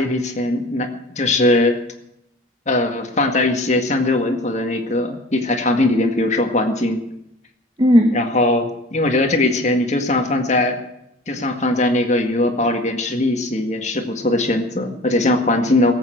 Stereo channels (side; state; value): both; normal; correlation 0.42